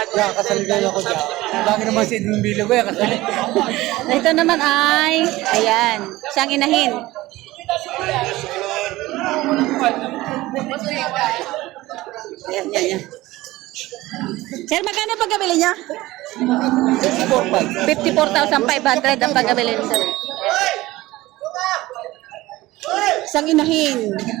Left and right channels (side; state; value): left; quieter; 18.3 dB